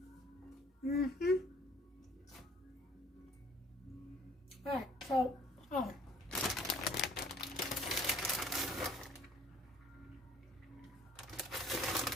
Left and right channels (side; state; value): both; normal; correlation 0.56